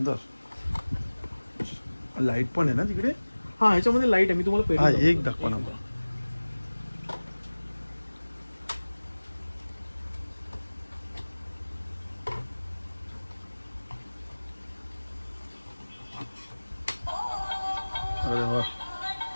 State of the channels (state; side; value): inverted; both; correlation -1.00